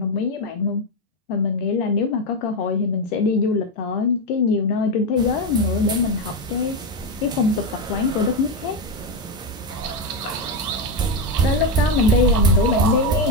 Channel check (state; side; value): normal; both; correlation 0.09